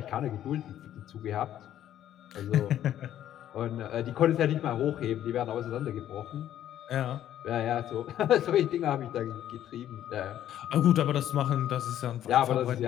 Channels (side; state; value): right; quieter; 11.5 dB